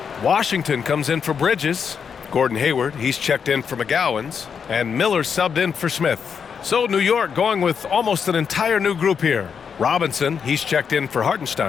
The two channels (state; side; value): quieter; right; 6.7 dB